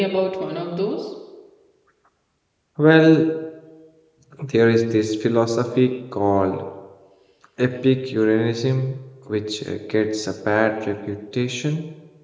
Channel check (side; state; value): both; identical; correlation 1.00